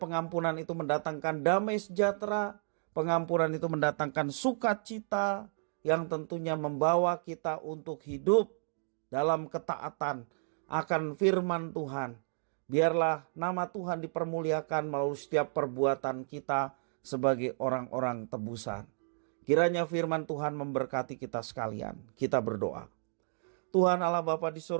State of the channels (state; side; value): silent; left; digital silence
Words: pengampunan itu mendatangkan damai sejahtera, pengampunan itu mendatangkan sukacita yang tentunya membawa kita untuk hidup dalam ketaatan akan firman Tuhan. Biarlah nama Tuhan dipermuliakan melalui setiap perbuatan kita sebagai orang-orang tebusan. Kiranya firman Tuhan memberkati kita sekalian. Kita berdoa. Tuhan Allah Bapa di